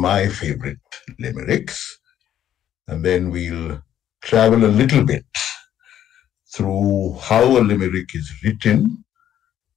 favorite limericks, and then we'll travel a little bit through how a limerick is written,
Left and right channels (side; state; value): right; quieter; 10.9 dB